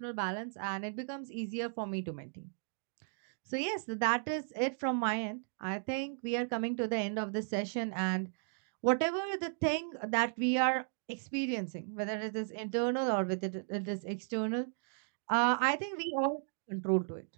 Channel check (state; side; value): silent; left; digital silence